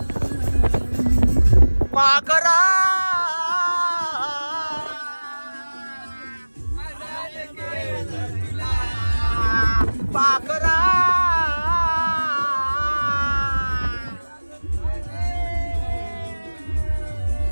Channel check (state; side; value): inverted; both; correlation -1.00